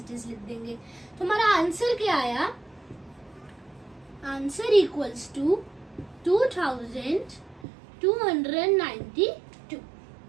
इज लिख देंगे। तो हमारा आंसर क्या आया, answer equals to 2292।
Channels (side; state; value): left; drops out; at 7.7 s